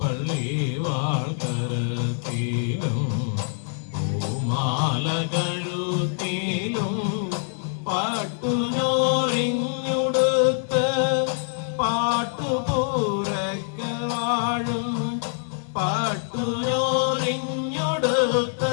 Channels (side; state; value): right; silent; digital silence